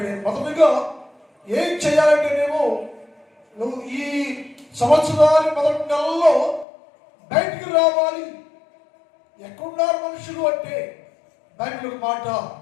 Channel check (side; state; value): right; drops out; at 6.7 s